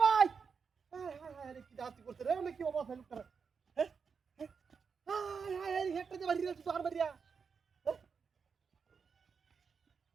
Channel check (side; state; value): left; quieter; 5.8 dB